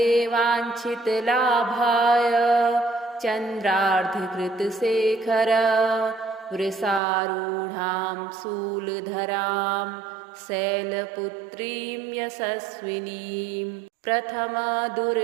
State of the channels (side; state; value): left; drops out; at 7.0 s